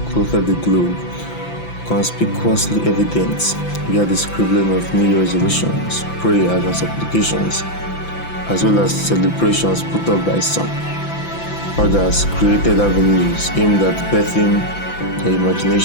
clothed the globe, conspicuously evident via the scribbling of New Year resolutions, prayers and supplications, as well as celebrations put up by some. Others created avenues aimed at birthing their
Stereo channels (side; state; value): right; late; 5.9 ms